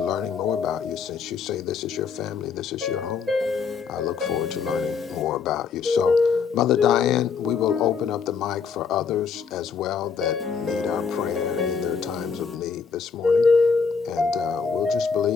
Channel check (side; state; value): right; quieter; 5.8 dB